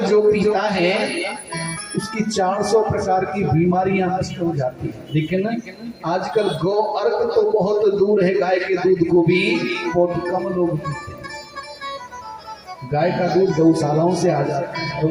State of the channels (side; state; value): both; identical; correlation 1.00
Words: जो पीता है उसकी 400 प्रकार की बीमारियां नष्ट हो जाती है। लेकिन आजकल गौ अर्क तो बहुत दूर है, गाय के दूध को भी बहुत कम लोग पीते हैं। गाय का दूध गौशालाओं से आ जाता है, तो